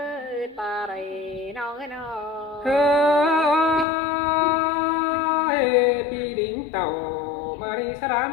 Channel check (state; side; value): drops out; right; at 3.9 s